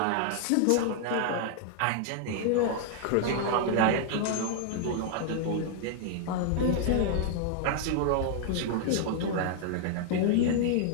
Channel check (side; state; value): both; different; correlation -0.01